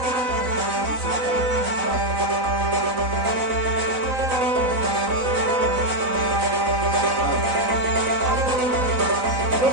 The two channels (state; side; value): late; left; 3.9 ms